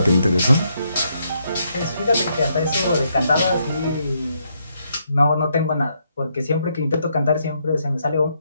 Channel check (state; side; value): inverted; both; correlation -0.77